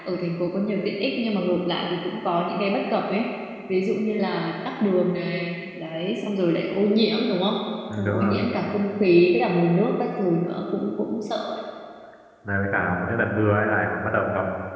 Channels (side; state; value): both; identical; correlation 1.00